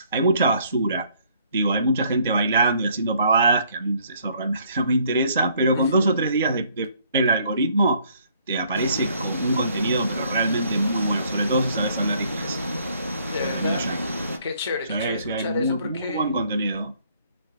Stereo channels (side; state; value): both; inverted; correlation -0.63